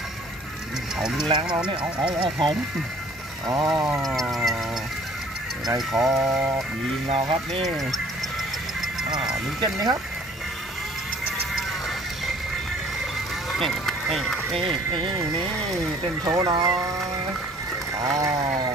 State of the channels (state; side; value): normal; both; correlation 0.53